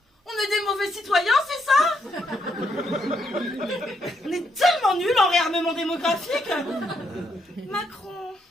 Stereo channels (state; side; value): normal; both; correlation 0.76